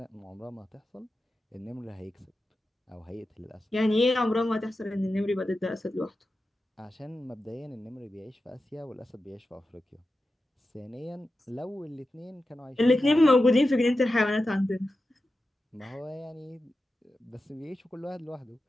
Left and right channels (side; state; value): both; normal; correlation 0.92